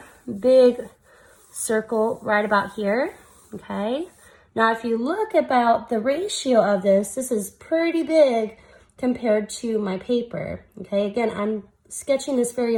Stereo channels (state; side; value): identical; both; correlation 1.00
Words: big circle right about here, okay? Now, if you look about the ratio of this is pretty big compared to my paper, okay? Again, I'm sketching this very